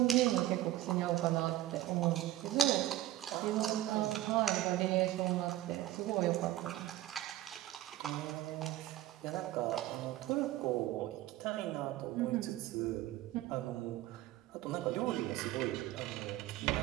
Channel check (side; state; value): left; quieter; 15.0 dB